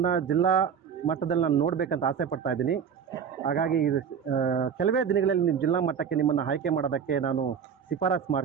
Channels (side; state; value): left; quieter; 7.3 dB